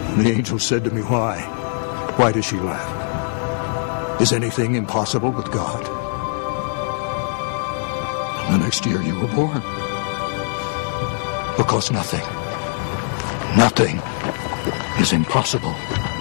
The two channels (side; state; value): right; silent; digital silence